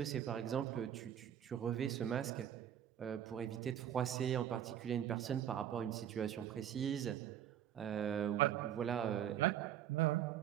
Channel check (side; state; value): left; quieter; 10.2 dB